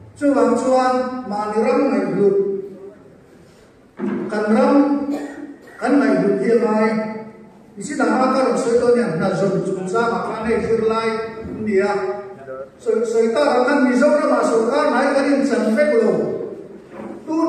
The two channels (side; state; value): both; identical; correlation 1.00